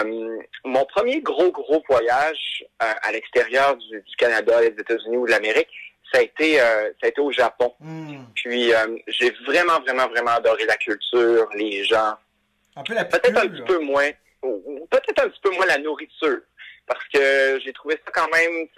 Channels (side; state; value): both; identical; correlation 1.00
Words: Mon premier gros voyage à l'extérieur du Canada, des États-Unis ou de l'Amérique, ça a été au Japon. Puis j'ai vraiment adoré la culture, les gens. Peut-être un petit peu moins la nourriture. Parce que j'ai trouvé ça quand même,